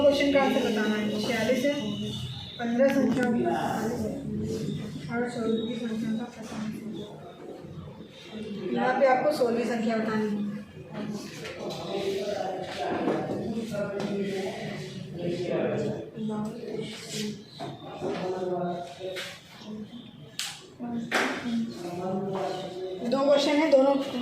क्वेश्चन का आंसर बताना है। 46 है, 15 संख्या और 16वीं संख्या का 45। यहाँ पे आपको 16वीं संख्या बतानी है। दो क्वेश्चन है, दोनों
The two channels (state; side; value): identical; both; correlation 1.00